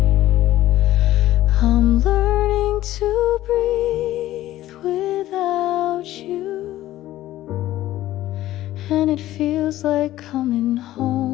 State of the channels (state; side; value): quieter; right; 14.7 dB